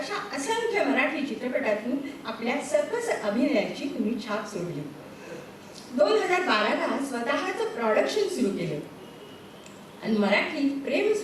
असंख्य मराठी चित्रपटातून आपल्या सकस अभिनयाची तुम्ही छाप सोडली. 2012ला स्वतःचं प्रोडक्शन सुरू केलं आणि मराठी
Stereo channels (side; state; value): both; identical; correlation 1.00